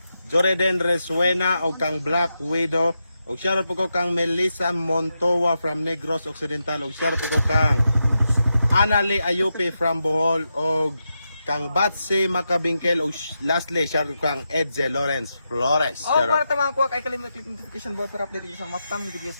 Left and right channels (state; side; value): inverted; both; correlation -0.87